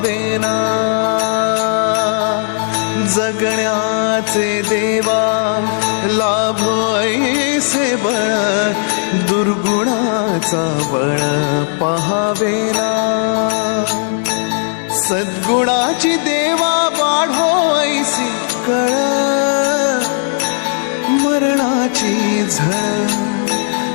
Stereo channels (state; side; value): silent; right; digital silence